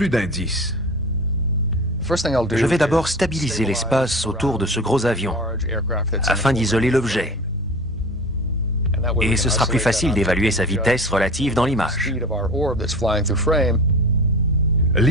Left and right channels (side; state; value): both; normal; correlation 0.35